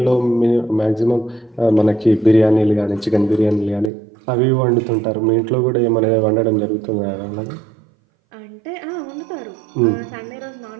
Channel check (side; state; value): left; drops out; at 3.9 s